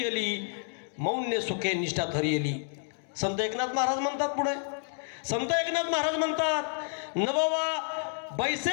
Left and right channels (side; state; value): right; silent; 58 dB below the other